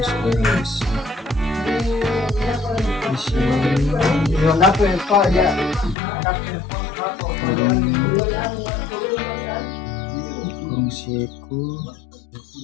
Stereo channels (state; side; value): drops out; right; at 6.0 s